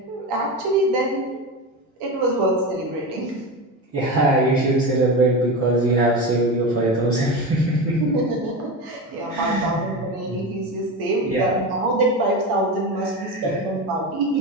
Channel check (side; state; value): both; normal; correlation 0.22